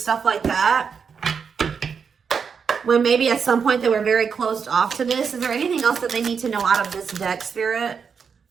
like that. When maybe at some point they were very closed off to this. Is there anything else that they need to know out of this deck, Spirit?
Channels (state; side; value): quieter; left; 6.2 dB